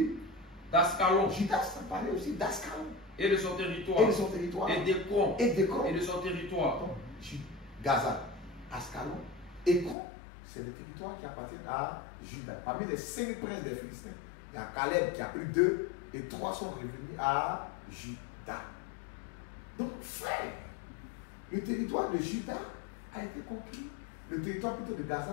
D'Ascalon. Juda s'emparait aussi d'Ascalon. Et de son territoire. Et d'Écron. Et de son territoire. Donc, Gaza, Ascalon, Écron, c'est des territoires qui appartiennent à Juda. Parmi les 5 princes des Philistins, il y a Caleb qui a pris 2 et 3 sont revenus à Juda. Donc, frère, le territoire de Juda a été conquis. Le territoire plutôt de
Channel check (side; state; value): right; drops out; at 10.0 s